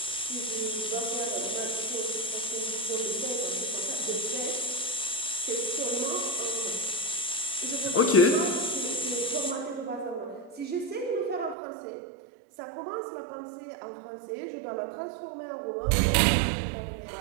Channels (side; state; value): left; drops out; at 11.6 s